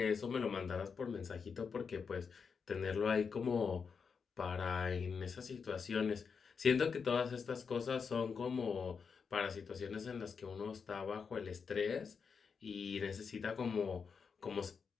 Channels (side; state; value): right; quieter; 5.8 dB